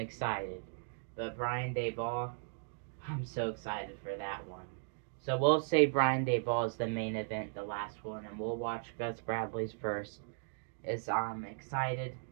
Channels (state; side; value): silent; left; digital silence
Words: But Brian Daboll, I'm so excited for that one. So we'll say Brian Daboll is the main event, the last one, and we'll watch Gus Bradley's first. Is I'm excited.